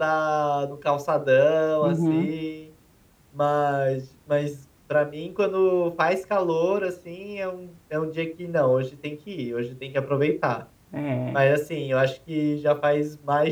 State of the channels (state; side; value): identical; both; correlation 1.00